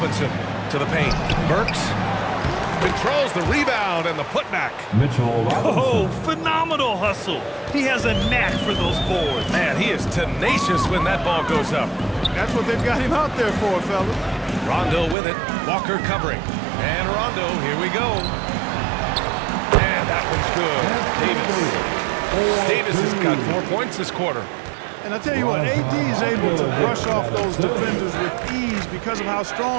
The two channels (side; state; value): left; drops out; at 15.2 s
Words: to the paint. Burks controls the rebound and the putback. Mitchell Robinson. Oh, phenomenal hustle. He has a knack for those boards. Man, he is tenacious when that ball goes up. That's what they've got him out there for, fellas. Rondo with it. Walker covering. And Rondo, here we go. And that one's good. Davis has got 4 points this quarter. And I tell you what, AD is able to brush off those defenders with ease because of how